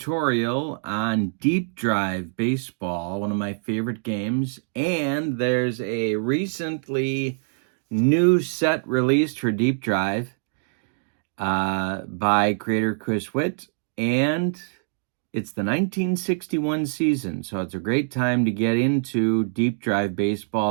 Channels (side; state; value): left; silent; digital silence